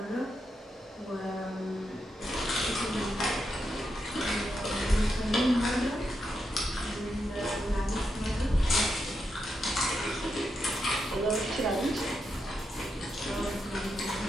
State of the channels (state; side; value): normal; both; correlation 0.84